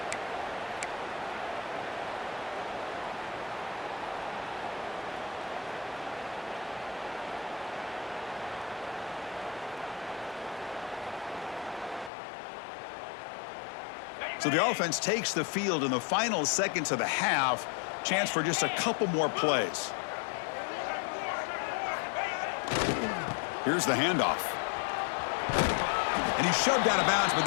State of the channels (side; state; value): right; drops out; at 12.1 s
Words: So the offense takes the field in the final seconds of the half. Chance for just a couple more plays. Here's the handoff. And he's shoved out of bounds by